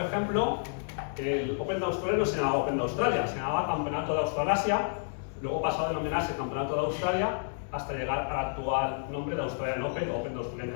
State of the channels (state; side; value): silent; right; digital silence